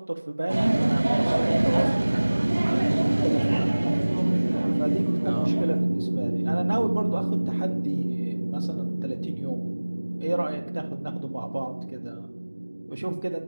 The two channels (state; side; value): inverted; both; correlation -1.00